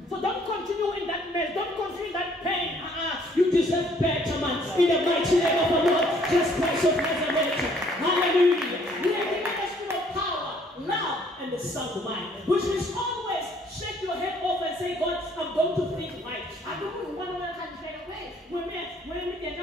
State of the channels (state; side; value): normal; both; correlation 0.62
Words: So don't continue in that mess, don't continue in that pain. You deserve better, man. In the mighty name of the Lord, Jesus Christ of Nazareth. Hallelujah. We are given the spirit of power, love, and the sound mind, which means always shake your head off and say, God, I'm going to think right. I don't want to say, when we